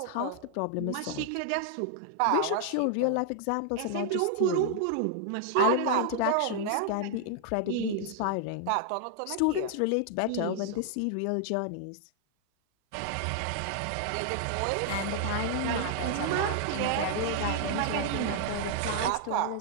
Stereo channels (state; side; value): different; both; correlation 0.00